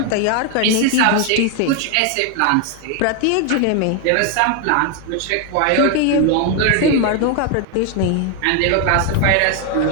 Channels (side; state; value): both; different; correlation 0.01